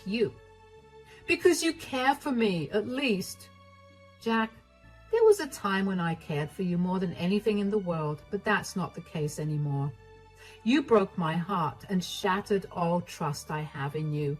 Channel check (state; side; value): identical; both; correlation 1.00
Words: you? Because you care for me, at least. Jack, there was a time when I cared for you more than anything in the world, but that's not the case anymore. You broke my heart and shattered all trust I have in you.